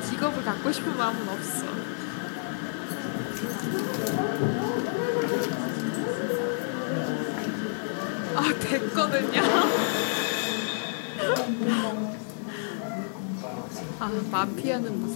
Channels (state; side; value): silent; right; 59 dB below the other